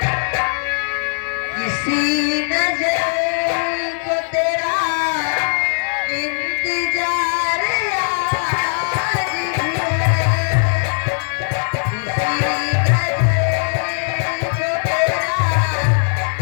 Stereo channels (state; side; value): silent; right; digital silence